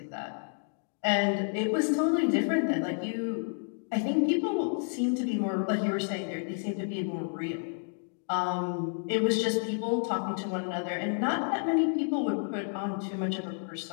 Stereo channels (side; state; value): right; silent; 58 dB below the other